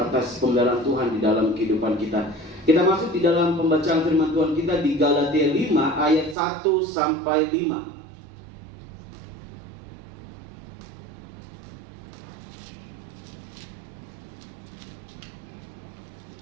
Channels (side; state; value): left; drops out; at 6.4 s